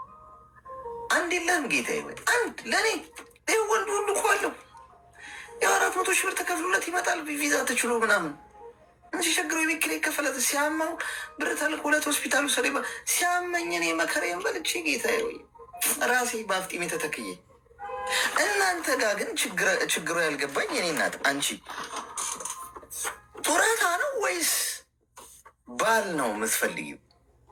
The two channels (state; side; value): identical; both; correlation 1.00